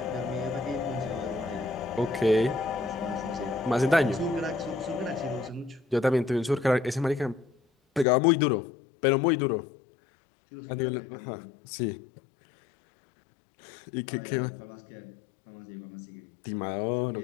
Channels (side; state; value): right; drops out; at 8.1 s